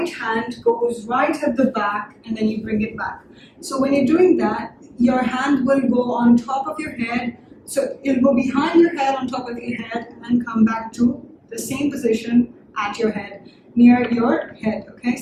hand goes right at the back and then you bring it back. So when you're doing that, your hand will go on top of your head. So it'll go behind your head, on top of your head, and come back to the same position at your head, near your head. Okay,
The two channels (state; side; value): identical; both; correlation 1.00